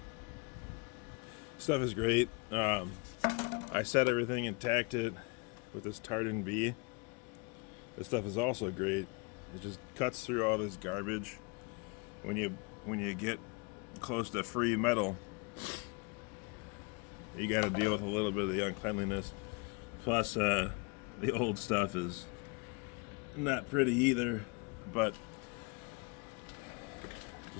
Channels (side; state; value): right; quieter; 30.0 dB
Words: Stuff is great. I set everything and tacked it with this Tartan B. This stuff is also great. It just cuts through all this garbage. When you get close to free metal, you got to deal with a little bit of the uncleanliness. Plus, the old stuff is not pretty either. But